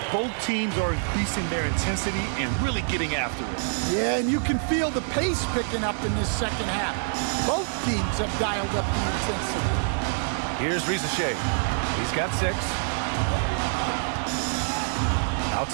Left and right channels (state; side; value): silent; left; 61 dB below the other